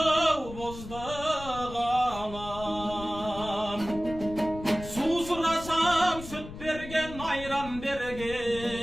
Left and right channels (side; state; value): left; noise; rumble, 12 dB below the sound